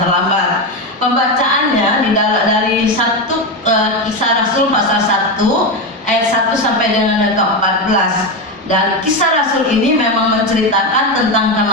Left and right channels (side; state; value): both; normal; correlation 0.13